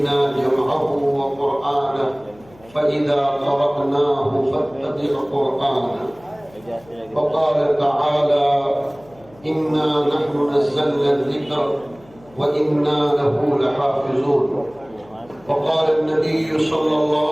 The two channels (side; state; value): left; noise; hum, 26 dB below the sound